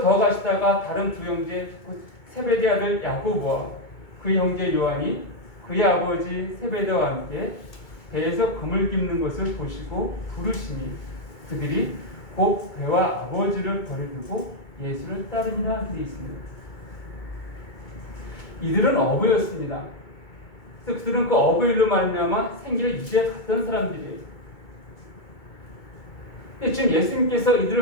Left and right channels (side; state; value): right; late; 2.2 ms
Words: 더 가시다가 다른 두 형제 곧 세베대 아들 야고보와 그 형제 요한이 그의 아버지 세베대와 함께 배에서 그물 깁는 것을 보시고 부르시니 그들이 곧 배와 아버지를 버려두고 예수를 따르니라 되어 있습니다. 이들은 어부였습니다. 그래서 그들은 그 어부 일로 말미암아 생계를 유지해 갔던 사람들이에요. 지금 예수님께서